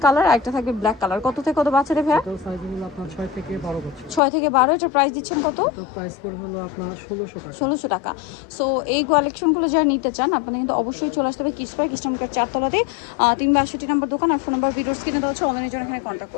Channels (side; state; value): right; drops out; at 4.2 s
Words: কালার আর একটা থাকবে ব্ল্যাক কালার। কত থেকে কত বাচ্চাদের ভাই? এটা সাইজ হলো আপনার 6 থেকে 12 বছর। 6 থেকে 12। এটা প্রাইস দিচ্ছেন কত? এটা প্রাইস পড়বে হলো আপনার 1600 টাকা। 1600 টাকা। সো এই কালেকশনগুলো যারা নিতে চান আপনাদের কিন্তু অবশ্যই চলে আসতে হবে কিডস পার্ক, ইস্টার্ন 4তলাতে 362 নম্বর দোকান। আর ফোন নাম্বার ভিডিওস কিনে দেওয়া হচ্ছে, অনলাইনের জন্য এখানে কন্ট্যাক্ট